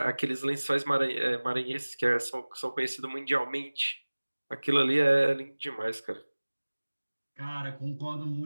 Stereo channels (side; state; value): both; inverted; correlation -1.00